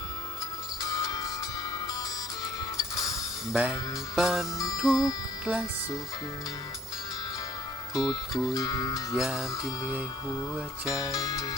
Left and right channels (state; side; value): normal; both; correlation 0.59